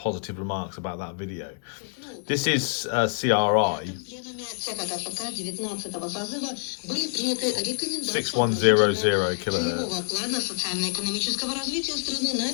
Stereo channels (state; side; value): silent; right; digital silence